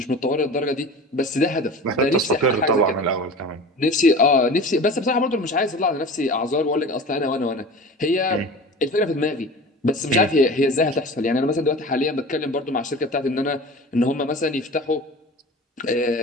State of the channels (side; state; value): both; normal; correlation 0.36